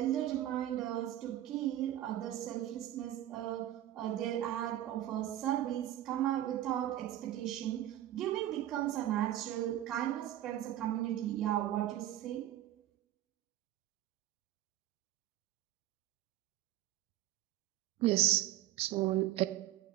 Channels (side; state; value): left; quieter; 13.3 dB